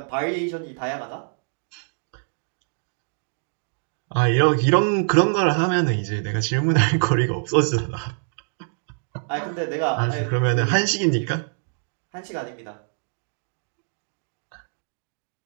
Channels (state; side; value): silent; left; digital silence